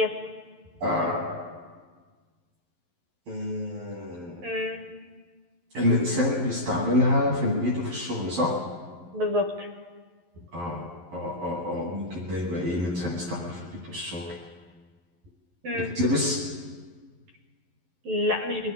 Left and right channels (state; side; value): late; left; 11 ms